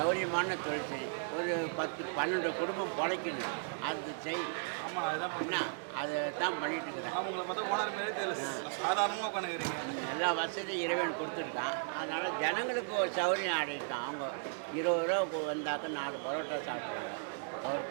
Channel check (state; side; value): silent; left; digital silence